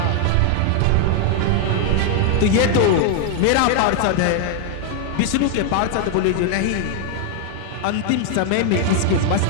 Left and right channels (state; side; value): different; both; correlation 0.00